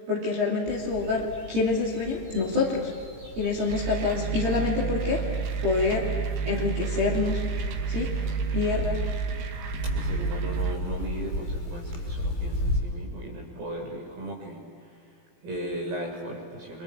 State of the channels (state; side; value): late; left; 17 ms